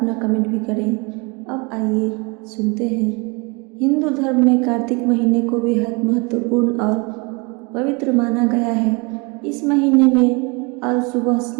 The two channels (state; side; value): quieter; left; 29.7 dB